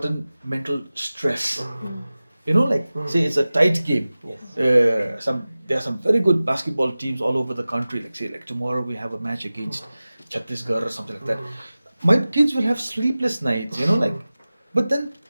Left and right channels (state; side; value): inverted; both; correlation -0.97